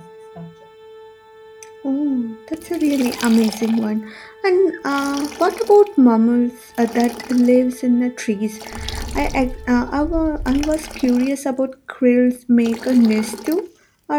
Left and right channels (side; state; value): both; identical; correlation 1.00